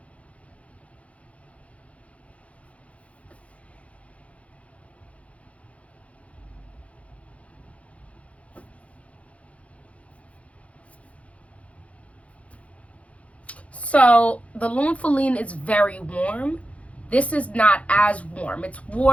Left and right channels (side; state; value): right; late; 0.064 ms